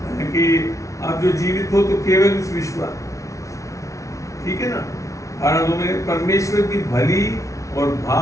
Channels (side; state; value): right; late; 0.15 ms